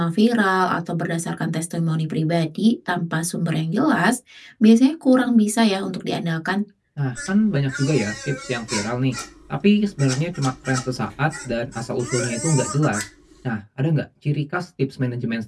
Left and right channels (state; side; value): identical; both; correlation 1.00